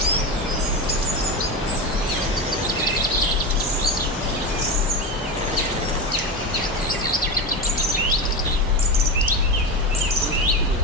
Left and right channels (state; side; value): normal; both; correlation 0.19